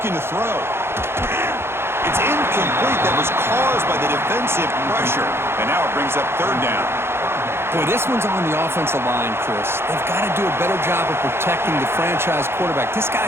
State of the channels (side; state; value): left; late; 0.12 ms